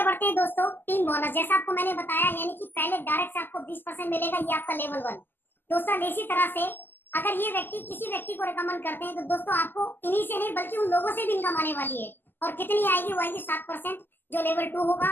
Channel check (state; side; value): late; right; 0.094 ms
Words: बढ़ते हैं दोस्तों, टीम बोनस, जैसा आपको मैंने बताया, यानी कि पहले डायरेक्ट से आपको 20% मिलेगा, ये आपका लेवल 1। दोस्तों इसी तरह से अगर ये व्यक्ति किसी व्यक्ति को रिकमेंड करते हैं तो दोस्तों आपको इन्हीं से नहीं बल्कि उन लोगों से भी इनकम आने वाली है। और कितनी आएगी, वो आएगी 7%, जो लेवल 2 होगा।